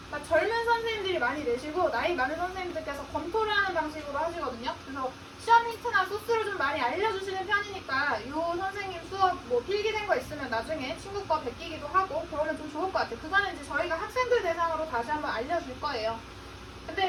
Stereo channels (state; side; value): identical; both; correlation 1.00